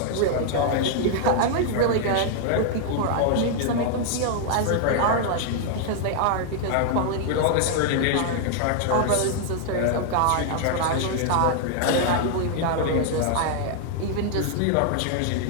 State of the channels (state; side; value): different; both; correlation 0.00